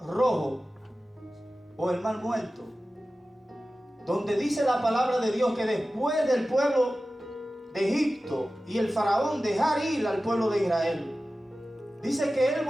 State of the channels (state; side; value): normal; both; correlation 0.95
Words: o el mar muerto, donde dice la palabra de Dios que después del pueblo de Egipto y el faraón dejar ir al pueblo de Israel, dice que él